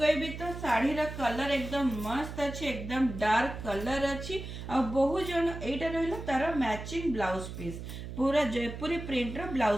तो साड़ी रा कलर एकदम मस्त अछि, एकदम डार्क कलर अछि। आ बहुत जन एटा रहला तार मैचिंग ब्लाउज पीस पूरा जयपुरी प्रिंट रो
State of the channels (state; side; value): noise; right; hum, 9 dB below the sound